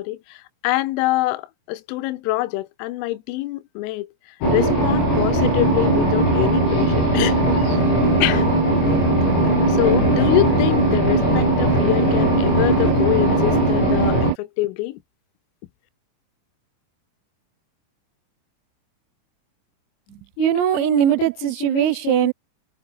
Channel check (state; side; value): late; right; 25 ms